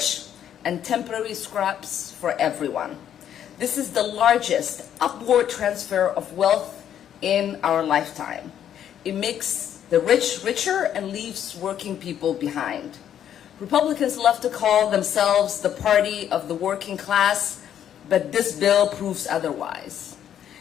and temporary scraps for everyone. This is the largest upward transfer of wealth in our lifetime. It makes the rich richer and leaves working people behind. Republicans love to call themselves the party of the working class, but this bill proves otherwise.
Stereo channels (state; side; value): quieter; right; 9.9 dB